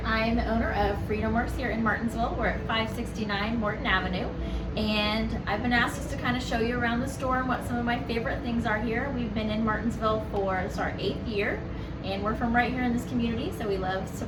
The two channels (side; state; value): both; identical; correlation 1.00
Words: I am the owner of Workz here in Martinsville. We're at 569 Morton Avenue, and I've been asked just to kind of show you around the store and what some of my favorite things are here. We've been in Martinsville for our 8th year, and we're from right here in this community, so we love